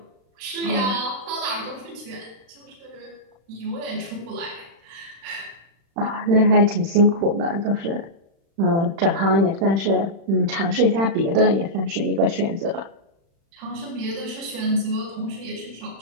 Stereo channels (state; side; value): late; left; 36 ms